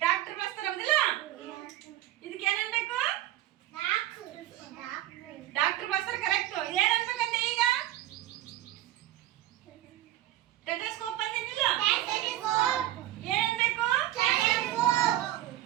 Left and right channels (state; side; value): quieter; left; 14.1 dB